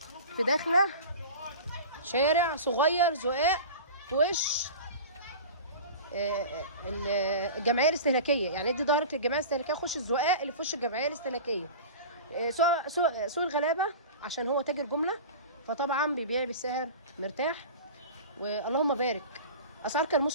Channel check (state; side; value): inverted; both; correlation -0.34